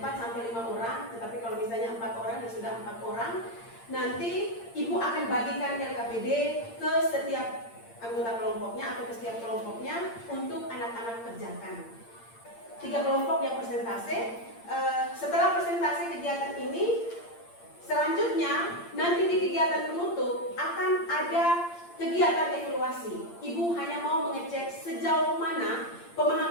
sampai 5 orang, tetapi kalau misalnya 4 orang ya sudah 4 orang. Nanti Ibu akan bagikan LKPD ke setiap anggota kelompoknya atau ke setiap kelompoknya untuk anak-anak kerjakan. 3 kelompok yang presentase. Setelah presentasi kegiatan ini, selanjutnya nanti di kegiatan penutup akan ada kegiatan evaluasi. Ibu hanya mau mengecek sejauh mana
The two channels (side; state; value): right; late; 8.7 ms